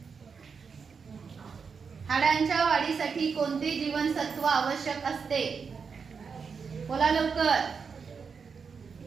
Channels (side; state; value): left; quieter; 5.7 dB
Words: हाडांच्या वाढीसाठी कोणते जीवनसत्व आवश्यक असते? बोला लवकर.